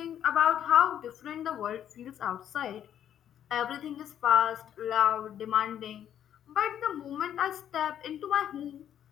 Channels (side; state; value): right; quieter; 10.1 dB